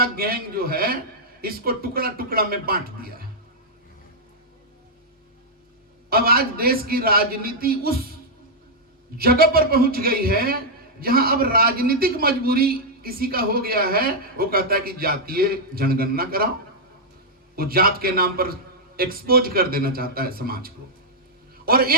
गैंग जो है, इसको टुकड़ा टुकड़ा में बांट दिया है। अब आज देश की राजनीति उस जगह पर पहुंच गई है जहां अब राजनीतिक मजबूरी किसी का हो गया है। वो कहता है कि जातीय जनगणना कराओ। वो जात के नाम पर एक्सपोज कर देना चाहता है समाज को। और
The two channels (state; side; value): normal; both; correlation -0.05